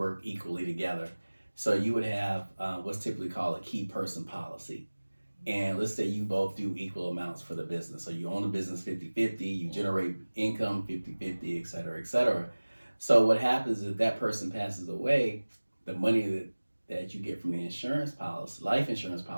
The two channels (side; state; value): both; inverted; correlation -1.00